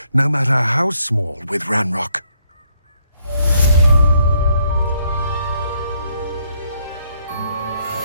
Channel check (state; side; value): inverted; both; correlation -0.71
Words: no matter how small, with Ranrock.